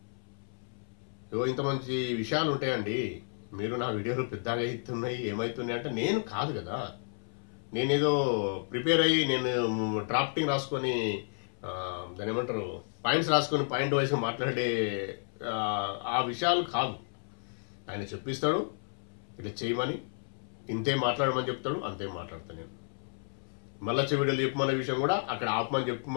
ఇంత మంచి విషయాలు ఉంటాయండి. మీరు నా వీడియోలు పెద్దగా అవుతున్నాయి, ఏమవుతున్నాయి అంటే నేను కాదు కదా. నేనేదో ప్రిపేర్ అయ్యి నేను డ్రాఫ్టింగ్ రాసుకొని దాని ఏమంటారు పాయింట్స్ రాసుకొని పాయింట్ వైజ్ మాట్లాడే ఆ విషయాలు కాదు. ఆయన చెప్పిస్తాడు ఇట్లా చేయమని, ఇంతే మాట్లాడమని చెప్తాడు, అంతే మాట్లాడతాను నేను. మళ్ళీ వీడియోలు చెప్పమనే విషయం కూడా అక్కడ ఆపమని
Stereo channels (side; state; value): right; silent; 57 dB below the other